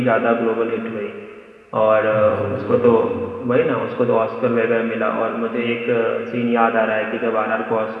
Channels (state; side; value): identical; both; correlation 1.00